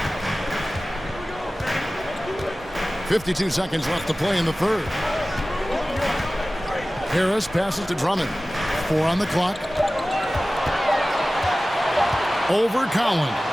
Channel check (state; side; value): normal; both; correlation 0.97